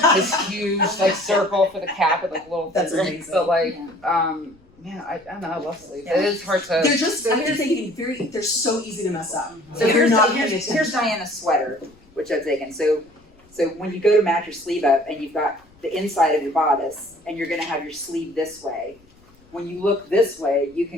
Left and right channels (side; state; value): left; noise; rumble, 30 dB below the sound